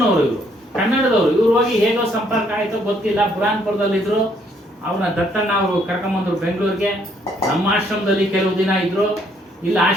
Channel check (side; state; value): both; normal; correlation 0.68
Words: ಇವರು ಕನ್ನಡದವರು. ಇವ್ರು ಹೋಗಿ ಹೇಗೋ ಸಂಪರ್ಕ ಆಯ್ತೋ ಗೊತ್ತಿಲ್ಲ, ಬುರಾನ್ಪುರದಲ್ಲಿದ್ರು. ಅವ್ರನ್ನ ದತ್ತಣ್ಣ ಅವರು ಕರ್ಕೊಂಬಂದ್ರು ಬೆಂಗಳೂರಿಗೆ. ನಮ್ಮ ಆಶ್ರಮದಲ್ಲಿ ಕೆಲವು ದಿನ ಇದ್ರು. ಇಲ್ಲಿ